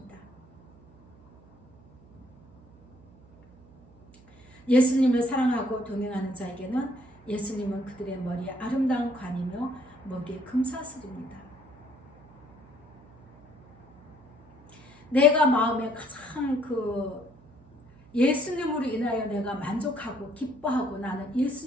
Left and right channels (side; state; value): right; noise; hum, 26 dB below the sound